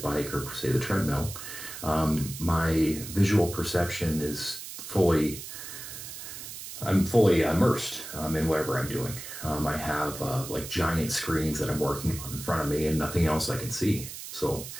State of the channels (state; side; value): noise; right; hiss, 10 dB below the sound